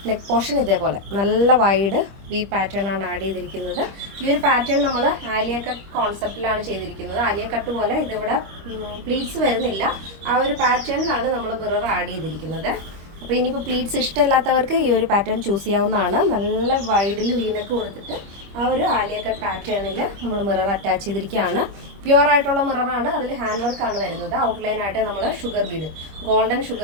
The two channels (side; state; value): left; late; 25 ms